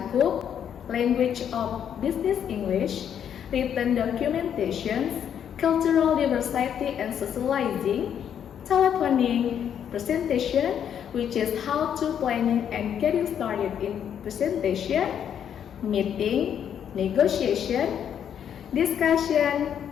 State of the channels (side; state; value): right; quieter; 8.9 dB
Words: Language of Business English, Written Documentations, Cultural Diversity and Socializing, Telephoning, Presentation, which is how to planning and getting started in presentation, meeting, negotiation, discussion,